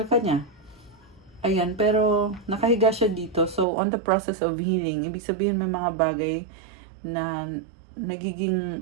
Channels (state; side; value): drops out; left; at 3.7 s